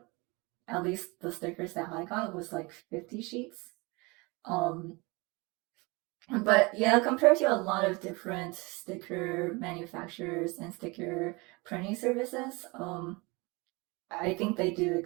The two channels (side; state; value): left; quieter; 26.2 dB